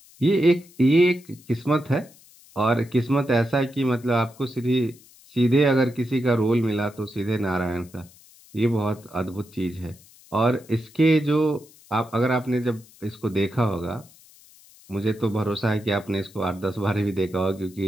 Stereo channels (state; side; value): noise; left; hiss, 25 dB below the sound